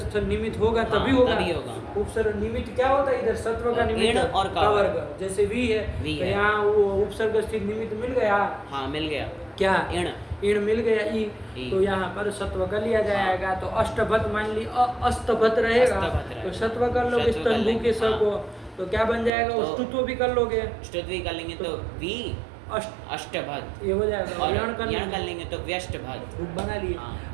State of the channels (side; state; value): left; drops out; at 19.3 s